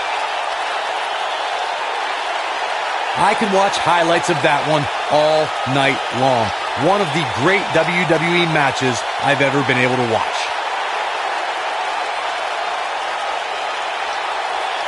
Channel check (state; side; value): identical; both; correlation 1.00